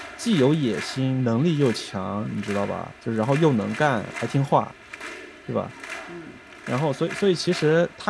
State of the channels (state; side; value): identical; both; correlation 1.00